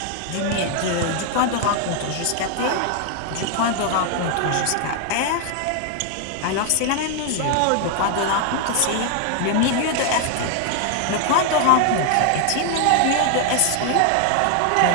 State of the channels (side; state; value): both; different; correlation 0.00